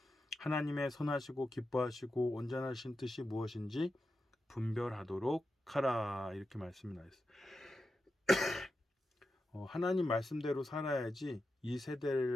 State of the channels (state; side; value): normal; both; correlation 0.89